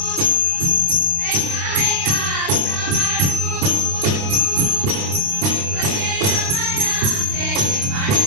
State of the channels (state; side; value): late; left; 28 ms